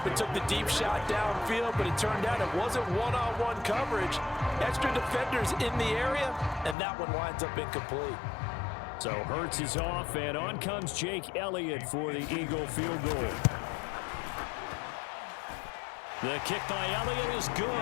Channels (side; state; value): right; drops out; at 6.8 s